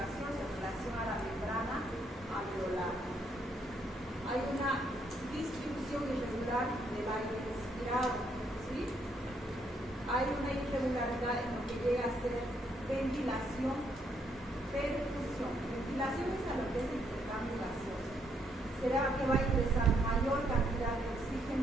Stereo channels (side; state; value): both; normal; correlation 0.73